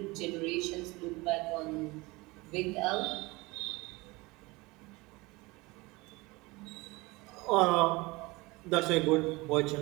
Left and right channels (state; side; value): quieter; left; 23.2 dB